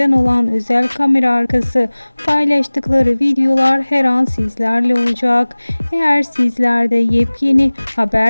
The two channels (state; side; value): inverted; both; correlation -1.00